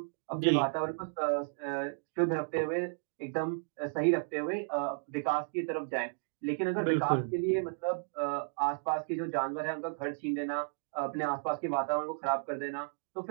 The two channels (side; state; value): left; silent; digital silence